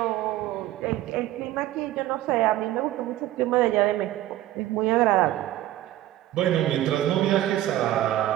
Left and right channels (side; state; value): left; quieter; 14.3 dB